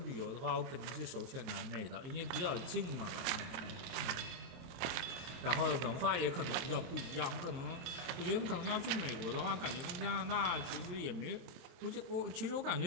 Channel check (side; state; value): left; late; 23 ms